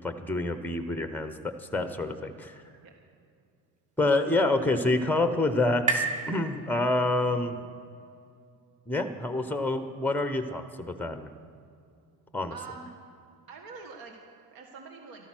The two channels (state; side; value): normal; both; correlation 0.60